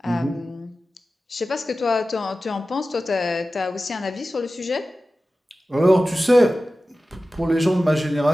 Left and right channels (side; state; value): both; normal; correlation 0.95